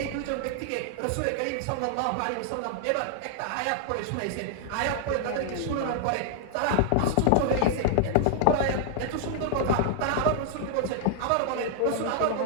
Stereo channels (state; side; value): different; both; correlation -0.01